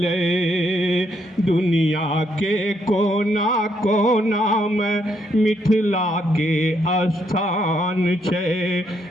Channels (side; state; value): both; normal; correlation 0.74